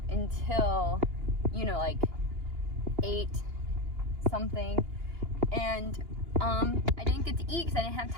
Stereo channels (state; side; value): late; left; 2.9 ms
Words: until, you know, like 8 something, and I didn't get to eat because I didn't have